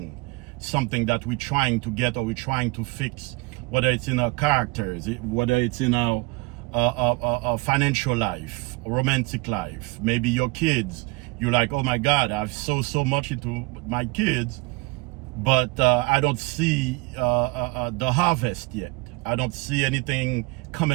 something that we're trying to get or we're trying to fix, whether it's in our characters, whether it's in our financial life, romantic life, maybe your kids. You're like, oh my God, I've sowed so much into my kids, but I don't see the harvest yet. I don't see anything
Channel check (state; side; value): quieter; left; 24.9 dB